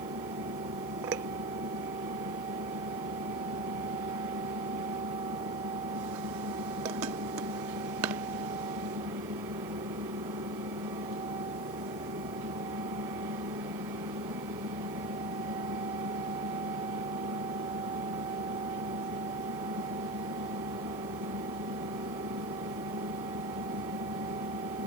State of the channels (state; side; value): noise; left; hiss, 18 dB below the sound